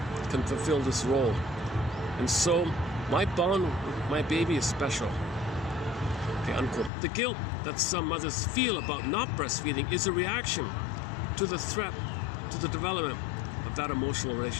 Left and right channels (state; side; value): drops out; right; at 6.9 s